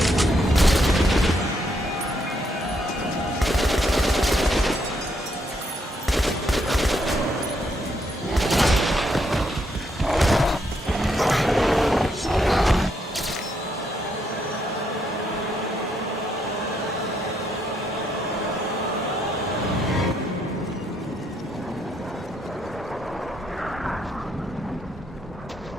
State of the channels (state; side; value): normal; both; correlation 0.75